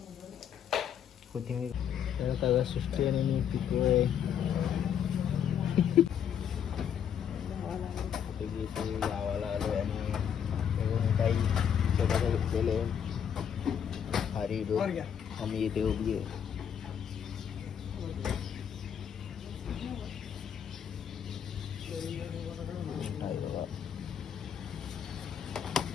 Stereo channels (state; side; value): quieter; right; 8.5 dB